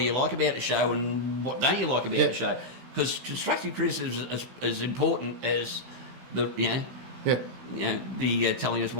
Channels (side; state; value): left; late; 16 ms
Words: you like about the show, and what don't you like about the show? Because constructive criticism is as important as the, the telling us